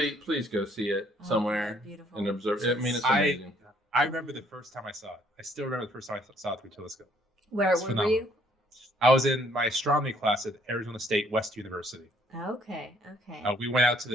Please go see it somewhere and observe it. I mean, it's amazing. I remember the first time I saw it. I still remember the first time I saw it through a telescope. Where were you? I was in my astronomy class at Arizona State West University. Okay. We went out to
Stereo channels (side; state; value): both; normal; correlation 0.64